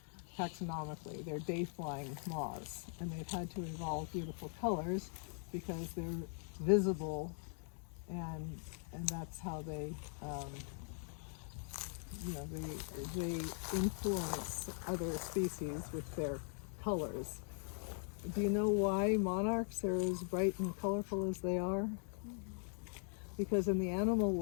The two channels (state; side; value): silent; right; 50 dB below the other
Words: taxonomically? They're day-flying moths, and they've had to evolve beautiful colors because they're visible, and that's how they, they influence other species with their colors. Do you know why monarchs are as bright and colorful as they are? Because in the animal